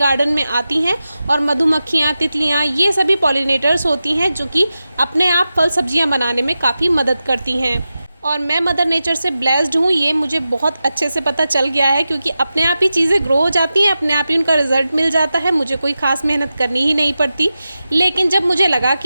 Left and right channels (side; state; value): both; inverted; correlation -0.92